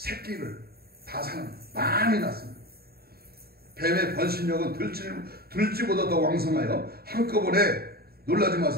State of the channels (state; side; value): late; left; 0.45 ms